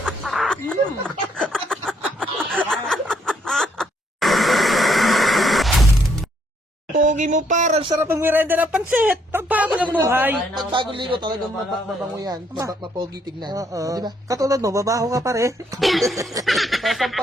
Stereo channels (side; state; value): both; normal; correlation 0.71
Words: Pogi mo par, ang sarap ang merenda ng pansit. Pagbago ng buhay. Pag bagong ligo talagang mabango yan. Mapogi tignan. Oo. Di ba? Katulad mo, babaho ka pare.